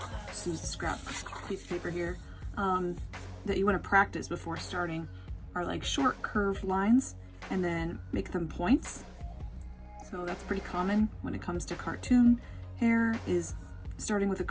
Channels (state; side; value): identical; both; correlation 1.00